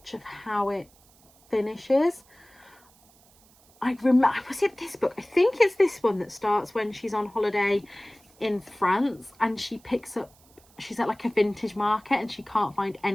of how it finishes. Was it this book? I think it's this one that starts when she's on holiday in France and she's at like a vintage market and she can't find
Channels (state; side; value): noise; right; hiss, 29 dB below the sound